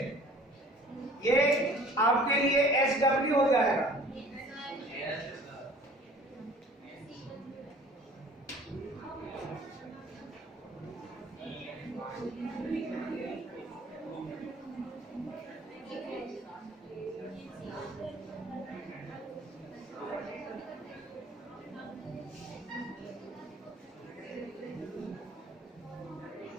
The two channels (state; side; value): normal; both; correlation 0.50